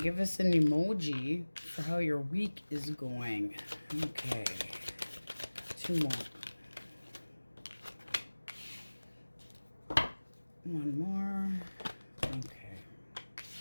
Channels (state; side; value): inverted; both; correlation -1.00